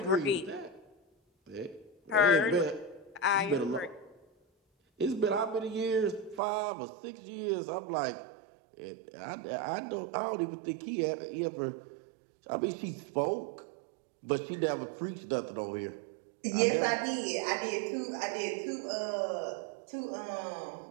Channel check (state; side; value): drops out; left; at 6.4 s